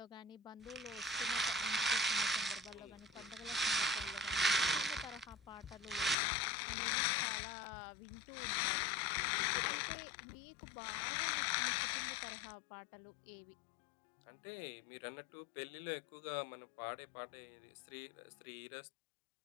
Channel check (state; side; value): drops out; right; at 6.2 s